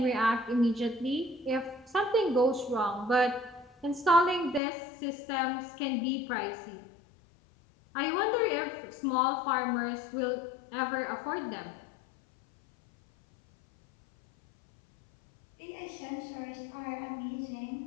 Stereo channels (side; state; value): right; drops out; at 4.6 s